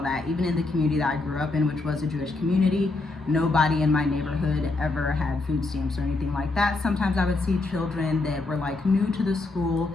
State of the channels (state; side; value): quieter; right; 3.3 dB